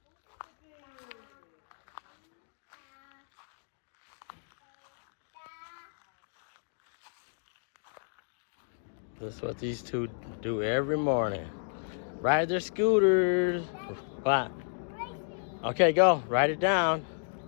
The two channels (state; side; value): silent; right; digital silence